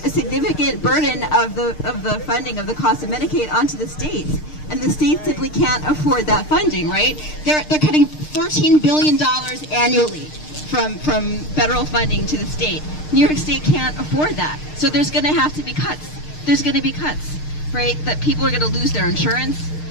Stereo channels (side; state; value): right; late; 6.6 ms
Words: a significant burden of the funding of the cost of Medicaid onto the states, and the states simply can't afford that funding, right? They're cutting $13 billion annually from federal funding to the state. New York State can't afford that, so there's going to have to be cuts. There's going to be cuts, right? That people are going to lose their insurance,